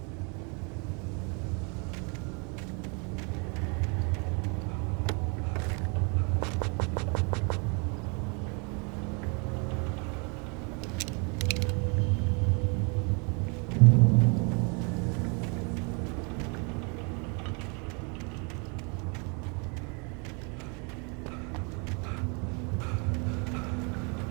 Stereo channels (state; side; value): quieter; left; 34.2 dB